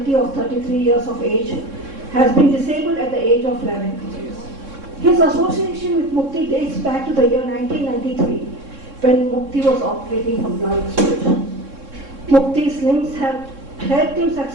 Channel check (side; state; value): left; late; 3.6 ms